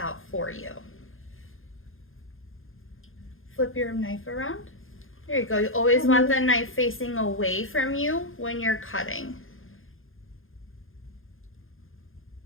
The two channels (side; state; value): right; late; 0.60 ms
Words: for you. Flip your knife around. There you go. You always want the knife facing away from you when you're cutting.